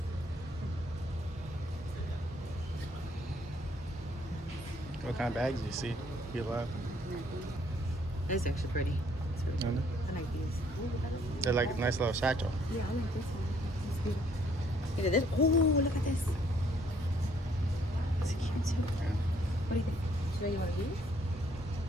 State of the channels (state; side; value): normal; both; correlation 0.65